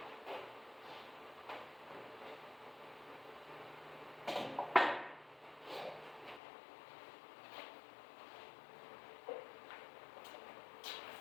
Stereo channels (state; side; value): drops out; right; at 6.4 s